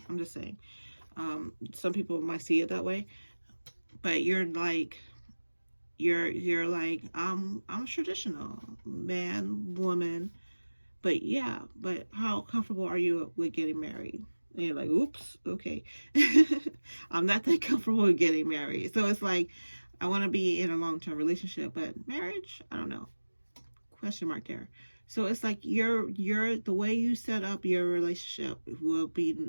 I'm just saying. Some people might see it that way. But you're like, you're like, I'm traditional, man, woman. But yeah, but how comfortable are you with getting married? And you're like, oops, okay. I'm not that comfortable with getting married. So it's like, I want to be in a long-term relationship, but marriage, I don't know. Question mark there. So it's like the way you set up your relationship will be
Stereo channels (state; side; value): inverted; both; correlation -1.00